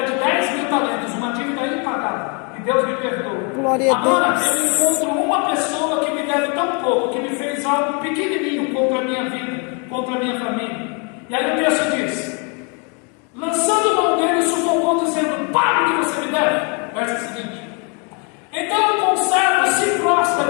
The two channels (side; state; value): right; quieter; 35.0 dB